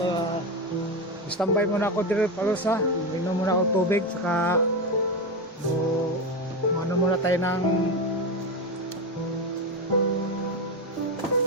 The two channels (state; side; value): normal; both; correlation 0.15